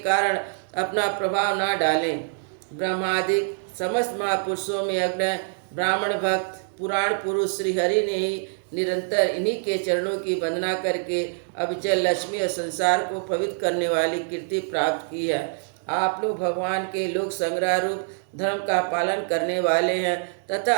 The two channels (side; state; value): left; silent; digital silence